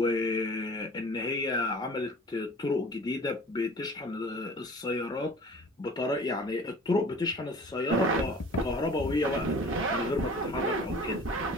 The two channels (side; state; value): both; normal; correlation 0.45